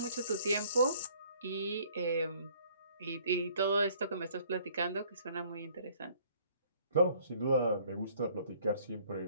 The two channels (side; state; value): both; inverted; correlation -0.59